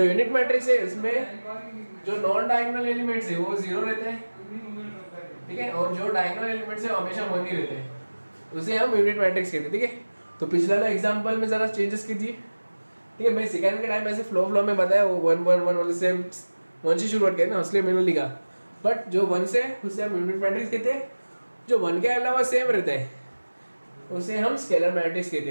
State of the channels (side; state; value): both; inverted; correlation -1.00